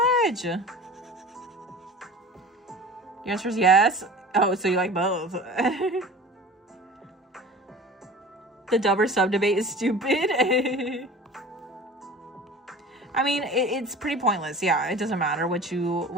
Your answer is yes. Oh, so you like both. The dub or sub debate is stupid. I mean, it's pretty pointless. Yeah, it doesn't matter what you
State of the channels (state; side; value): normal; both; correlation 0.39